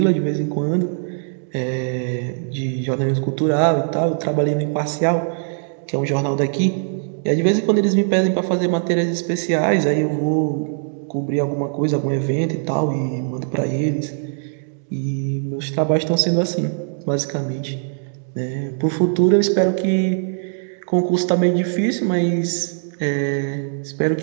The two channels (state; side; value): silent; left; 65 dB below the other